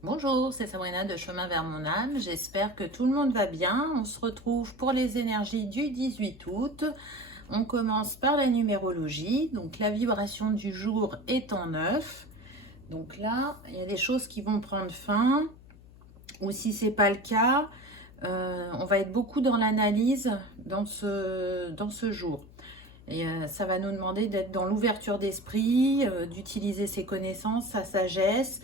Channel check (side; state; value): left; noise; hum, 21 dB below the sound